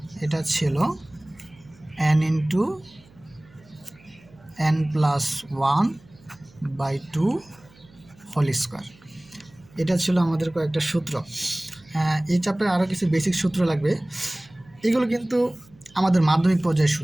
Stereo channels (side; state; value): right; noise; hum, 27 dB below the sound